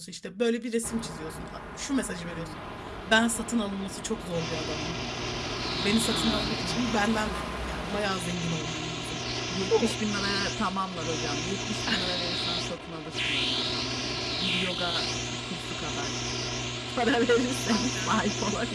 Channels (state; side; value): identical; both; correlation 1.00